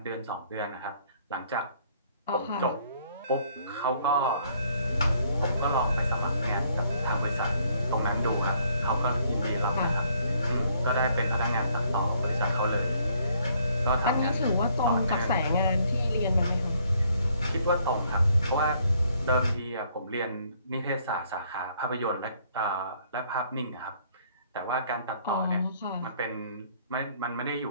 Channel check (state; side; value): inverted; both; correlation -0.65